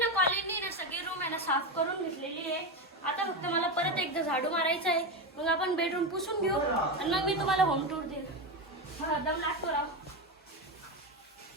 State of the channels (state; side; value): normal; both; correlation 0.15